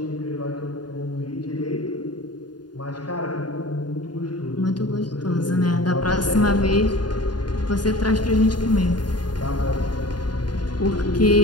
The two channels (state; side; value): late; right; 0.70 ms